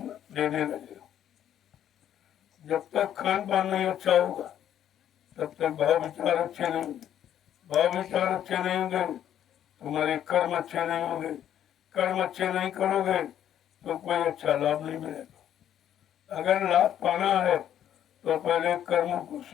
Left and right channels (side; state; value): right; quieter; 10.5 dB